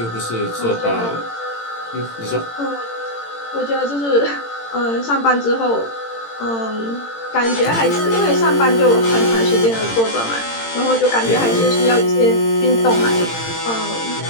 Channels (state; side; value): late; right; 18 ms